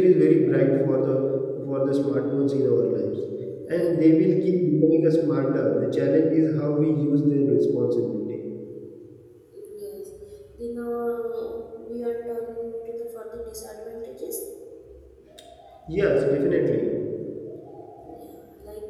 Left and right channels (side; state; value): both; identical; correlation 1.00